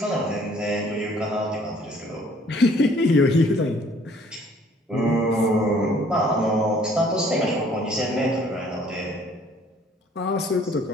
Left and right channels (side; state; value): both; normal; correlation 0.58